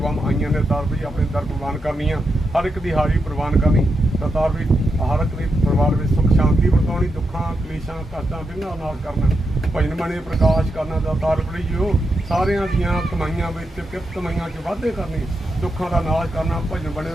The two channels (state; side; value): normal; both; correlation 0.85